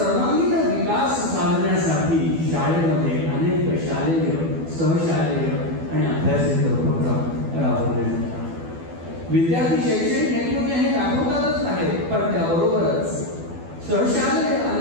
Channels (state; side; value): late; left; 12 ms